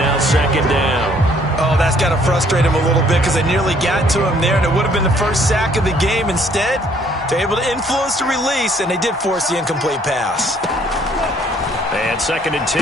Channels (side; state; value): both; normal; correlation 0.62